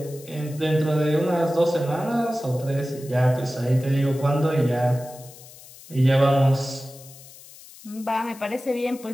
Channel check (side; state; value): left; noise; hiss, 20 dB below the sound